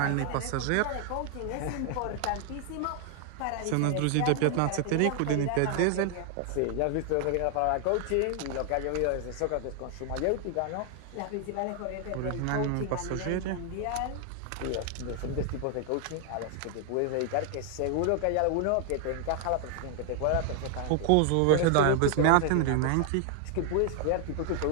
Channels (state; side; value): different; both; correlation 0.00